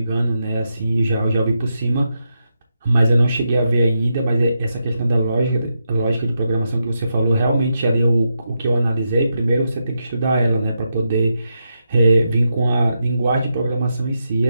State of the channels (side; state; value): both; inverted; correlation -0.85